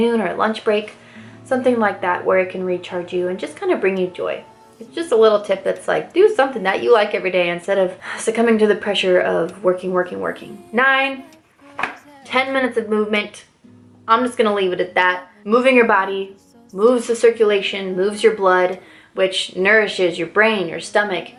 or at lunch break, something like that where it can recharge you and just kind of bring you joy. It's just a little tip that's like, do something that you like every day instead of succumbing to the pressure of working. 9, 10 minutes of movement. I'm just gonna leave it at that. Moving your body moves the circulation, moves your blood, which nourishes your brain, your stomach,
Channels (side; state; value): both; identical; correlation 1.00